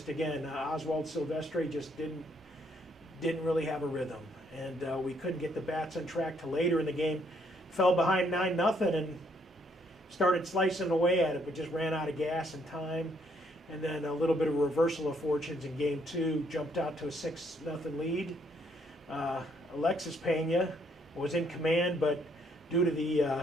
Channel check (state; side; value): normal; both; correlation 0.69